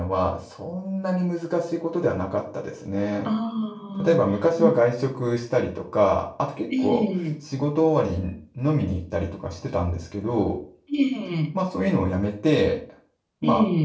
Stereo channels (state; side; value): identical; both; correlation 1.00